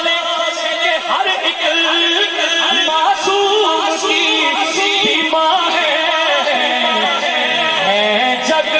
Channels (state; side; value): identical; both; correlation 1.00